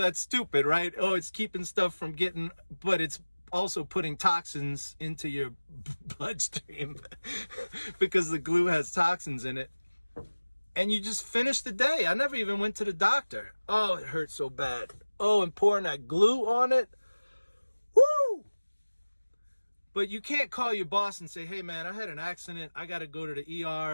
stupid, right? Oh, it's keeping stuff from getting, but it's also putting toxins into your bloodstream because the glue has toxins in it. And you just finish the day. I never even went to the doctor. Oh, it hurt so bad. Oh, and pouring that glue on it. Woo! But you can't call your boss and say, hey man, I had an accident. I got to go to the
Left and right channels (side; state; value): both; inverted; correlation -1.00